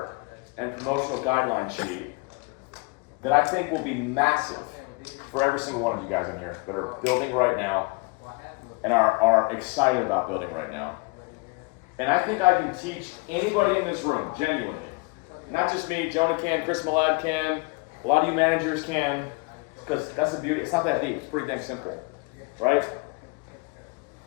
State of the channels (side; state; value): right; quieter; 28.8 dB